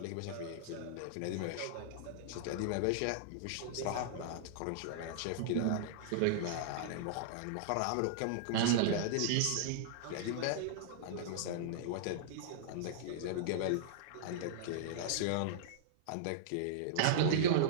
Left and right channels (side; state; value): both; different; correlation -0.02